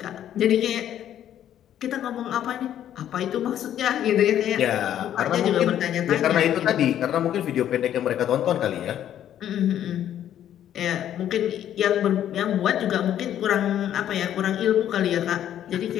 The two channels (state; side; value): quieter; right; 10.9 dB